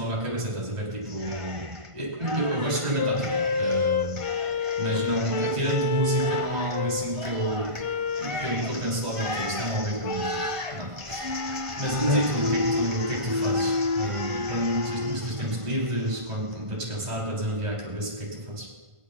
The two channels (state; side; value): late; left; 1.5 ms